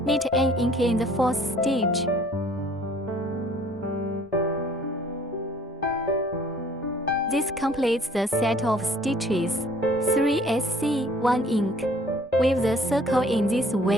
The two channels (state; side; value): normal; both; correlation 0.56